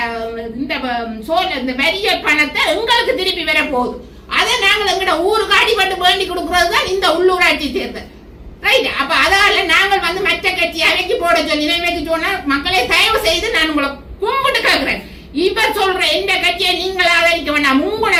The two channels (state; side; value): identical; both; correlation 1.00